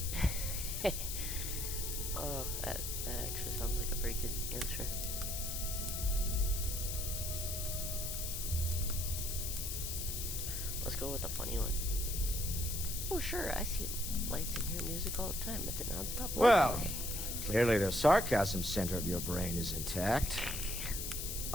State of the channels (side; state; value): left; noise; hiss, 3 dB below the sound